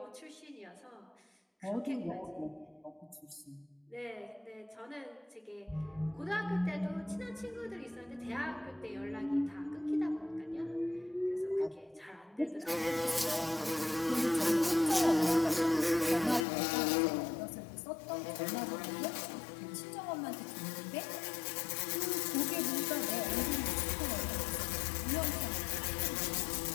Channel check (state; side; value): drops out; right; at 16.4 s